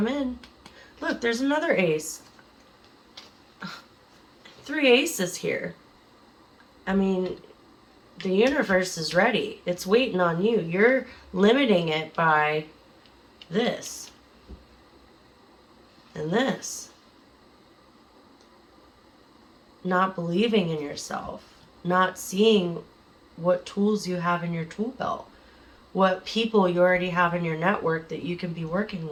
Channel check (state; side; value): identical; both; correlation 1.00